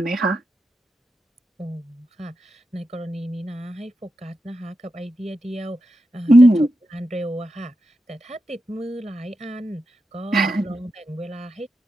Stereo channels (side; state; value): both; normal; correlation 0.88